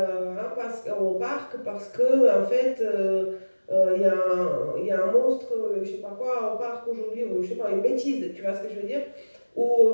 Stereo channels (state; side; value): inverted; both; correlation -1.00